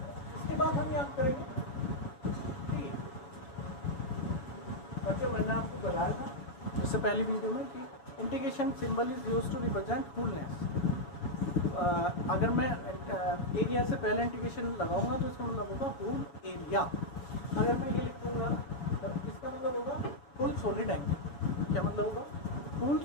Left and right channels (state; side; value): late; right; 7.1 ms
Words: इसके बाद हम याद करेंगे बच्चों, मैंने आपको बताया था इससे पहली वीडियो में कि integration symbol is used to represent wholeness. अगर मैं एरिया से पहले इंटीग्रेशन लगाऊंगा तो इसका मतलब होगा होल एरिया। अगर मैं ये लिखूंगा तो इसका मतलब होगा फुल सॉलिड एंगल। क्या मतलब होगा? Full